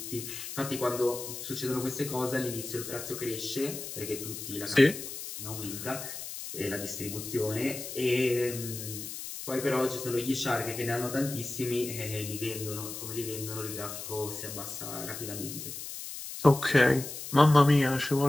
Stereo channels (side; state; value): left; noise; hiss, 8 dB below the sound